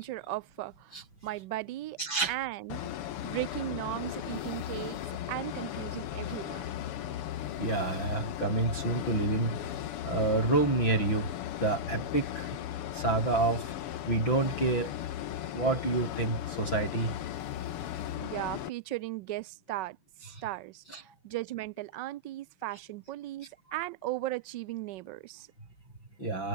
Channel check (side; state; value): right; late; 6.0 ms